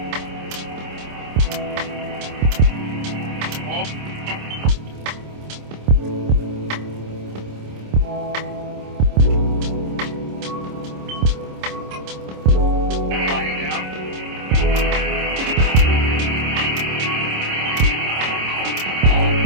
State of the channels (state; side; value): late; left; 26 ms